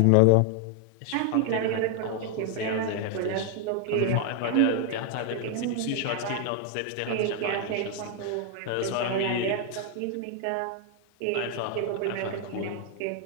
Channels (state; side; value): different; both; correlation 0.00